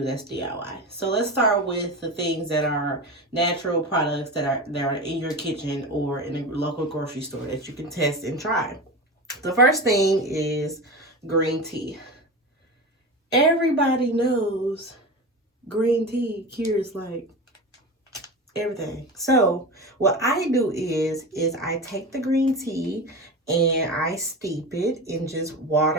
that's DIY. So let's start with the things that are natural products that are in your kitchen or in a local grocery store that you can test and try. The first thing is green tea. Everybody knows green tea cures like everything. So what I do is I take the green tea and I steep it in just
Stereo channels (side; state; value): both; normal; correlation 0.26